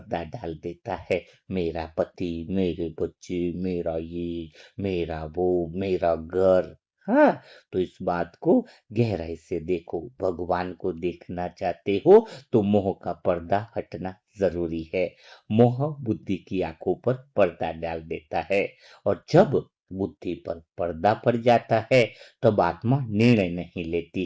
डाल देता है। मेरा पति, मेरे बच्चे, मेरा ये, मेरा वो, मेरा घर। हाँ, तो इस बात को गहराई से देखो। भगवान को देखना चाहते हो तो मोह का पर्दा हटना जरूरी है। मोह बुद्धि की आंखों पर पर्दा डाल देता है, और जब बुद्धि पर पर्दा पड़ जाता है, तब आत्मा निर्णय नहीं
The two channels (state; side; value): identical; both; correlation 1.00